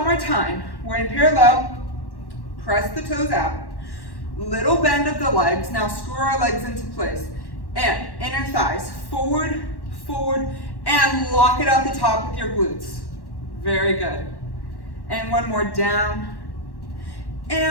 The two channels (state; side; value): late; right; 1.1 ms